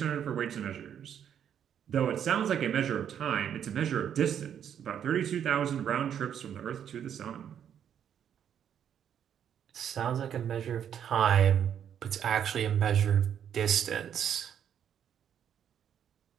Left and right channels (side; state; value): left; quieter; 9.0 dB